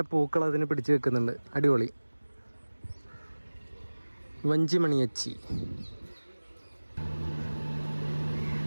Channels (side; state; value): both; inverted; correlation -1.00